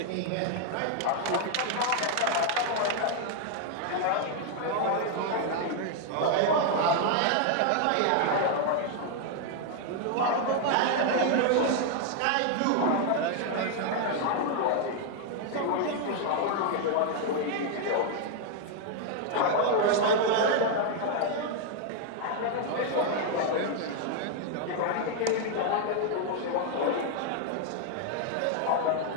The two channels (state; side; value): different; both; correlation 0.00